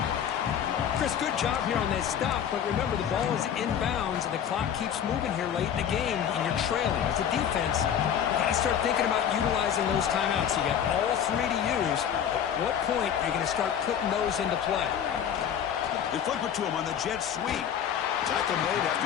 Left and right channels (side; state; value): right; quieter; 8.9 dB